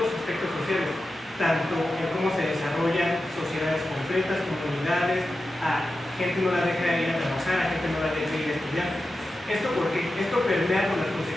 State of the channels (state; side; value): normal; both; correlation 0.92